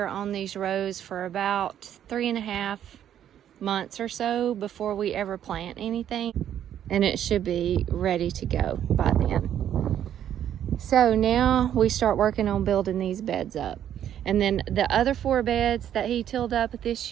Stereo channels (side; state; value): left; quieter; 10.3 dB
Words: on these rows for about 3.5 months or so before we ever plant anything, and it should be ready to go by then. So now we start working on building these beds up, and then the other 4 beds that he tilled up this